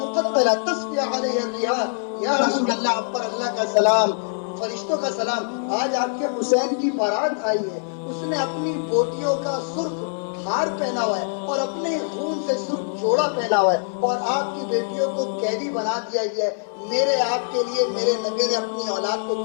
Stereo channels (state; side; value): silent; right; digital silence